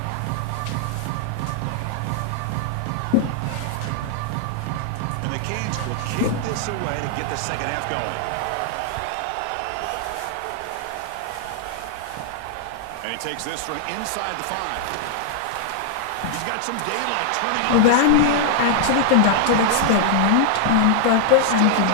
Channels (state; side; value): different; both; correlation 0.00